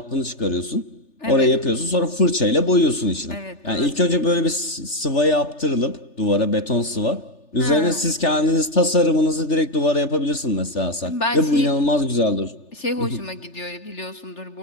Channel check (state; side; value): late; right; 3.4 ms